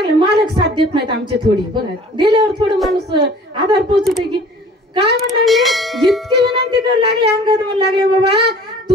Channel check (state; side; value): normal; both; correlation 0.49